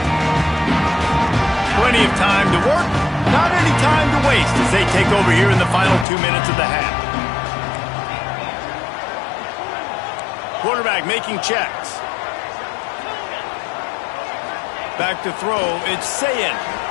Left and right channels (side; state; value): right; drops out; at 6.1 s